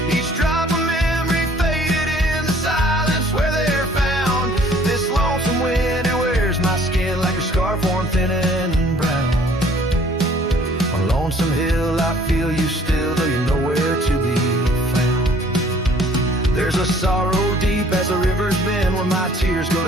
Each drop of memory faded in the silence where they're found. This lonesome wind, it wears my skin like a scarf worn thin and brown. On Lonesome Hill I feel you still, though you're nowhere to be found. There's a sorrow deep as the river's bend where my tears go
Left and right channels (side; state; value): both; normal; correlation 0.57